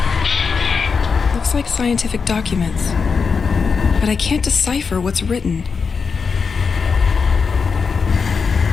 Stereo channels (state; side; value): quieter; right; 5.4 dB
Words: Looks like scientific documents, but I can't decipher what's written.